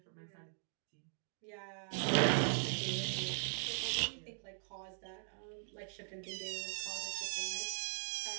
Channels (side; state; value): left; silent; digital silence